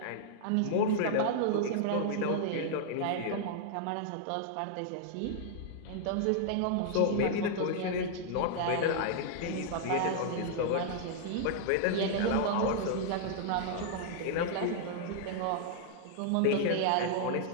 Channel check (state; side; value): different; both; correlation -0.01